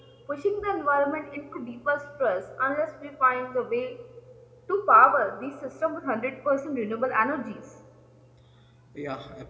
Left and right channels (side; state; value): both; identical; correlation 1.00